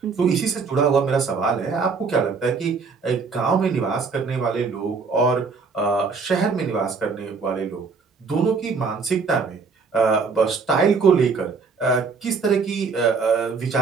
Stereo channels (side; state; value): left; quieter; 4.9 dB